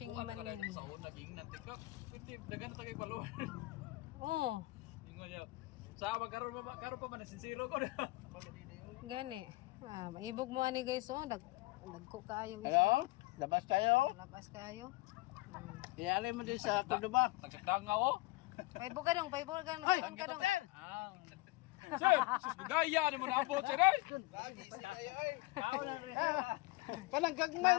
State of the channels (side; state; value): right; quieter; 21.6 dB